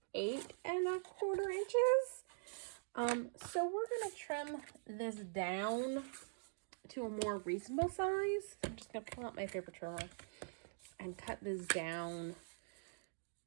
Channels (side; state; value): left; silent; digital silence